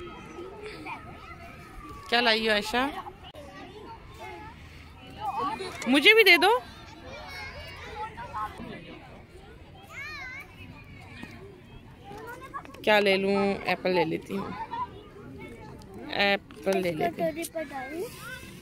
क्या लाई हो आयशा? मुझे भी दे दो। क्या ले लूं? एप्पल ले लेती हूँ, एप्पल ले लेती हूँ।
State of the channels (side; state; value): both; identical; correlation 1.00